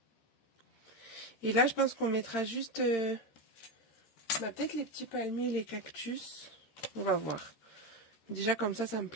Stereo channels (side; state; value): right; late; 13 ms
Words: Et là, je pense qu'on mettra juste... peut-être les petits palmiers, les cactus. On va voir. Déjà, comme ça me